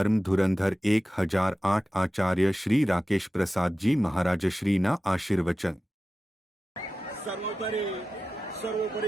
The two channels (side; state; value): both; normal; correlation 0.94